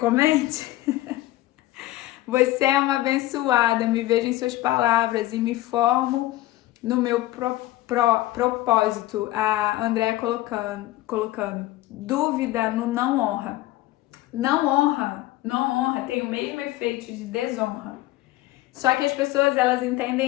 Você é uma abençoada, me vejo em suas palavras e me formo no meu propósito. A Andréa colocando dúvida no não honra. Não honra tem o mesmo efeito de desonra. Só que as pessoas, elas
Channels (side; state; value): right; quieter; 16.7 dB